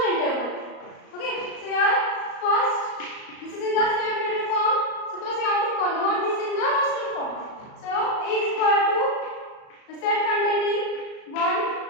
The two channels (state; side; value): late; right; 37 ms